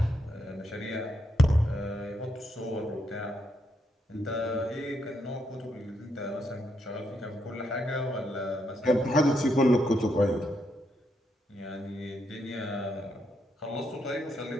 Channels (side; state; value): both; normal; correlation 0.79